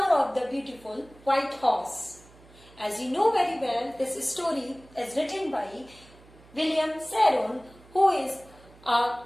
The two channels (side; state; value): right; noise; hum, 25 dB below the sound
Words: of the Beautiful White Horse. As you know very well, this story is written by William Saron, who is an